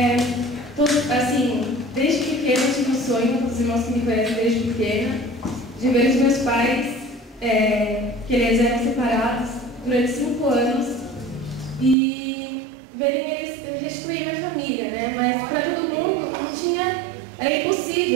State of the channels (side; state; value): left; drops out; at 12.0 s